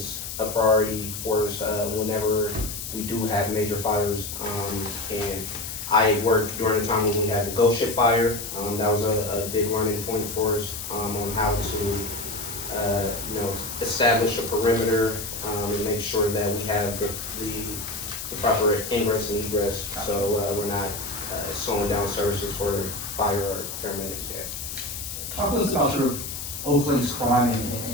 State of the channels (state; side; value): noise; left; hiss, 7 dB below the sound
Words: a priority for us whenever we do have major fires. And I worked during the time when we had the ghost ship fire. That was a big learning point for us on how to establish a perimeter and make sure that we have the proper ingress and egress, so we're not slowing down services for fire or paramedics yet. talk to us about sort of Oakland's crime